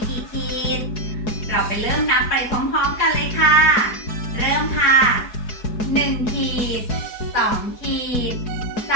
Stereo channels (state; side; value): late; right; 4.7 ms